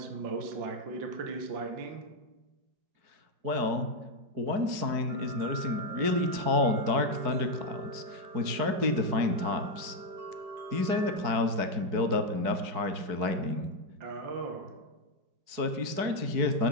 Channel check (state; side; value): late; left; 4.7 ms